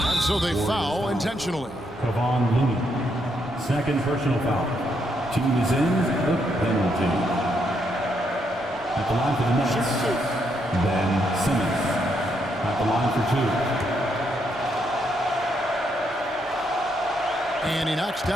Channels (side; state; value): both; normal; correlation 0.77